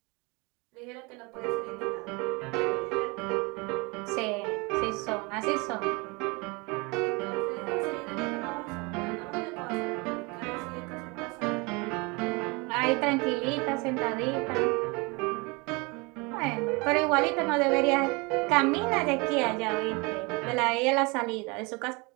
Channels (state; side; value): quieter; left; 27.7 dB